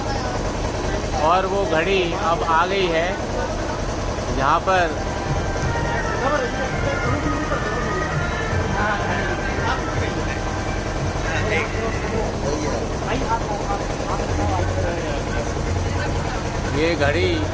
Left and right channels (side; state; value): both; identical; correlation 1.00